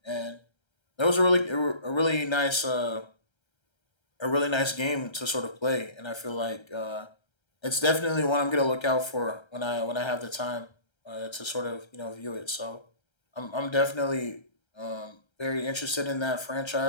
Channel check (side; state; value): right; late; 1.3 ms